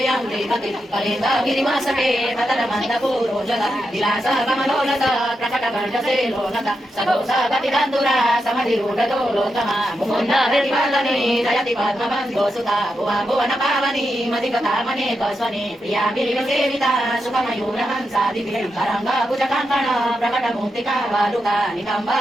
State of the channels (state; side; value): normal; both; correlation 0.86